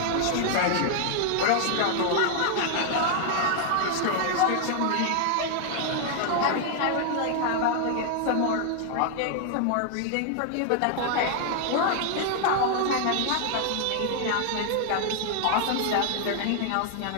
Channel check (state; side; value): different; both; correlation 0.00